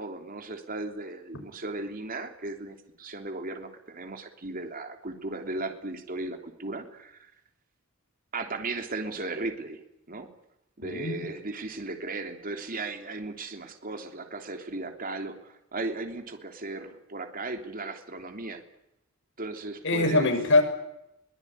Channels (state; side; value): normal; both; correlation -0.19